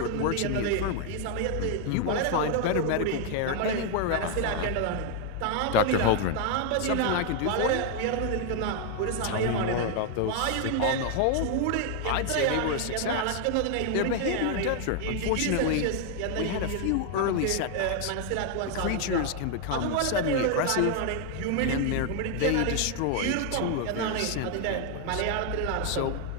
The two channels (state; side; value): different; both; correlation 0.00